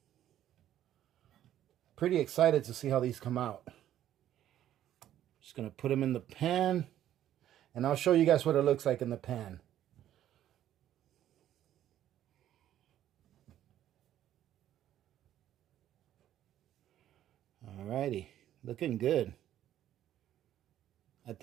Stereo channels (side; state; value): left; quieter; 11.8 dB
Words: Pretty excited to see how these come out. Just going to put them in the pan, and I'll show you guys what it looks like in the pan. Alrighty, looking good. I